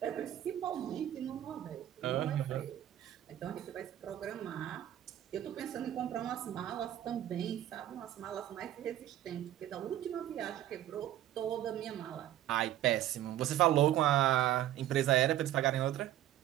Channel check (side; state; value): left; quieter; 12.6 dB